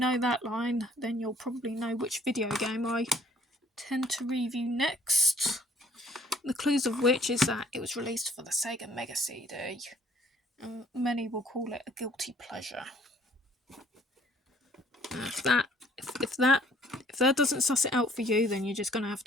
that line, then you'll probably know which video game I tend to review next. The clues of which is that it was released for the Sega Mega CD, and many will call it a guilty pleasure. If that doesn't suss it out for you, then you're just going to have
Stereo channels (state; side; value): normal; both; correlation 0.59